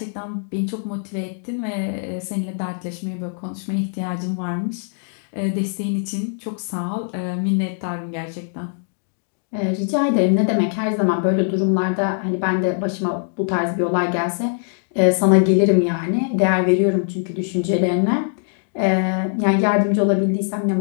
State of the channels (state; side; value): silent; right; digital silence